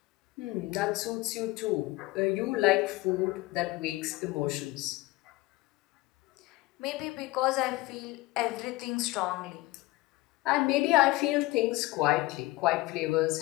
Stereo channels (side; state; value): right; quieter; 20.4 dB